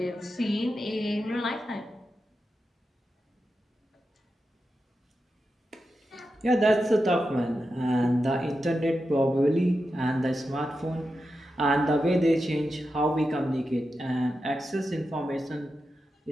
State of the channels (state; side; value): normal; both; correlation 0.89